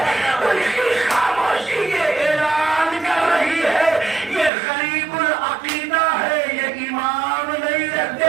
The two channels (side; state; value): left; drops out; at 4.5 s